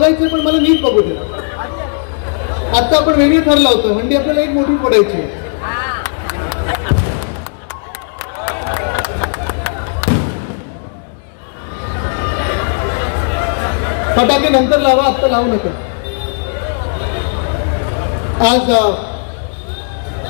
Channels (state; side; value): silent; right; digital silence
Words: पण मला नीट बघू दे. आता आपण वेगळे ठरला होतं. हंडी आपल्याला एक मोठी फोडायची. फटाके नंतर लावा, आत्ता लावू नका. आज